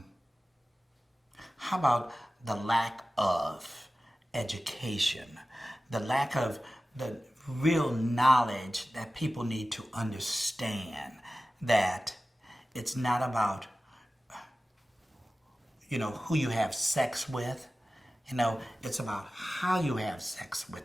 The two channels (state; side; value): normal; both; correlation 0.96